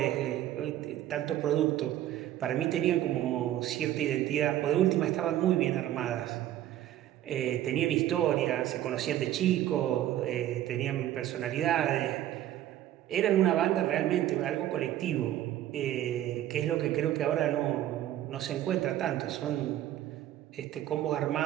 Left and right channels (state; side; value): quieter; left; 12.8 dB